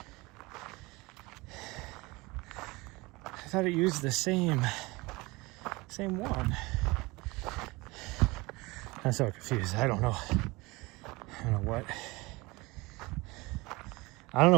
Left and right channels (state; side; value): quieter; left; 23.4 dB